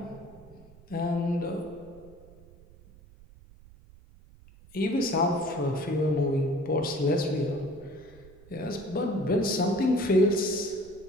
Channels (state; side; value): noise; right; rumble, 23 dB below the sound